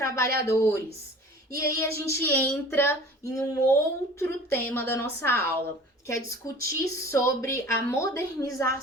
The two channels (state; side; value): normal; both; correlation 0.44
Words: E aí a gente entra em um outro tema da nossa aula, que é discutir sobre a